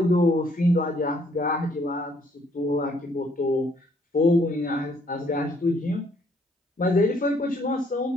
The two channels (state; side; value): normal; both; correlation 0.66